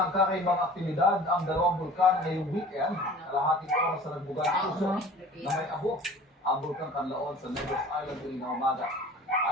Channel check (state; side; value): normal; both; correlation 0.44